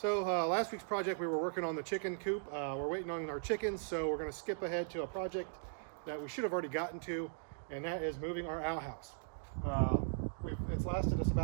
last week's project we were working on the chicken coop. We're waiting on our chickens, so we're going to skip ahead to a project that we should have already gotten to, and that is moving our outhouse. It's lasted us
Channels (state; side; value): silent; left; digital silence